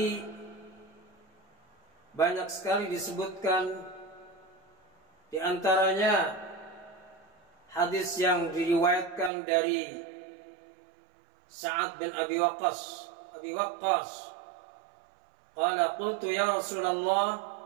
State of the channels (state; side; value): drops out; left; at 9.3 s